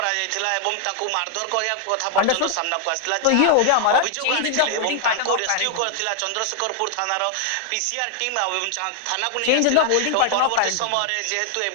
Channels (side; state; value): both; different; correlation 0.00